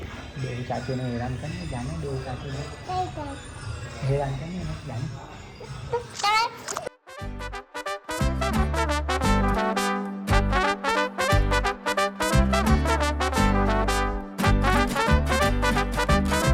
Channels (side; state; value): both; identical; correlation 1.00